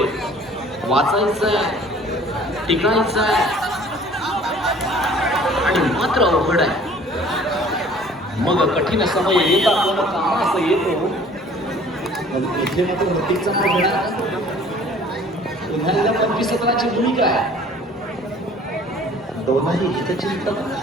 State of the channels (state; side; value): normal; both; correlation 0.52